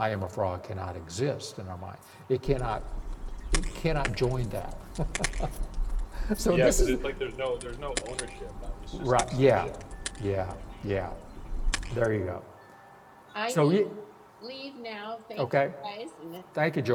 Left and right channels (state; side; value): identical; both; correlation 1.00